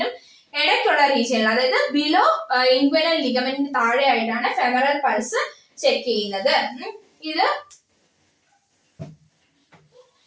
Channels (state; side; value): identical; both; correlation 1.00